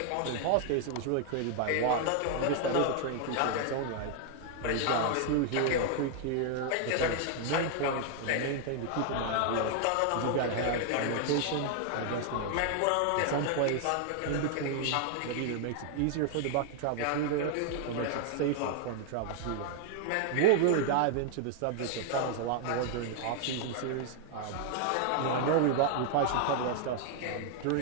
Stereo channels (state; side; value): different; both; correlation 0.00